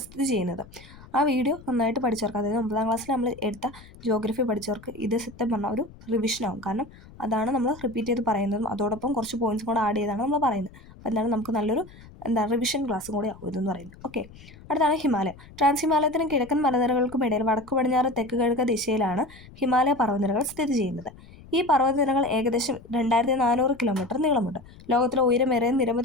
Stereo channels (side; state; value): left; noise; rumble, 21 dB below the sound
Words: സ്ഥിതി ചെയ്യുന്നത്. ആ വീഡിയോ നന്നായിട്ട് പഠിച്ചവർക്ക്, അതായത് 9ാം ക്ലാസ്സിൽ നമ്മൾ എടുത്ത ജിയോഗ്രഫി പഠിച്ചവർക്ക് ഇത് സത്യം പറഞ്ഞാൽ ഒരു റിവിഷനാവും. കാരണം അതാണ് നമ്മൾ റിപ്പീറ്റ് ചെയ്ത് പറയുന്നതും അതോടൊപ്പം കുറച്ച് പോയിന്റ്സും കൂടെ ആഡ് ചെയ്താണ് നമ്മൾ പറയുന്നത്. അപ്പോൾ എന്താണ് നമുക്ക് നല്ലൊരു റിവിഷൻ ക്ലാസ്സും കൂടെ ആവും ഇതെന്ന് പറയുന്നത്. ഓക്കെ, അടുത്താണ് ഹിമാലയം. ട്രാൻസ് ഹിമാലയത്തിനും കിഴക്കൻ മലനിരകൾക്കും ഇടയിൽ വടക്ക് പടിഞ്ഞാറ് തെക്ക് കിഴക്ക് ദിശയിലാണ് ഹിമാലയ പർവ്വതനിരകൾ സ്ഥിതി ചെയ്യുന്നത്. ഈ പർവ്വതനിരകൾ ഏകദേശം 2400 കിലോമീറ്റർ നീളമുണ്ട്. ലോകത്തിലെ ഉയരമേറിയ